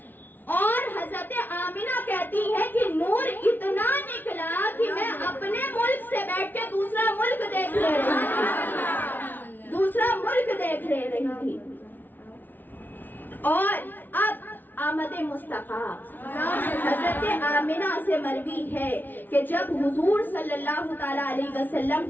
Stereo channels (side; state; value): right; late; 0.089 ms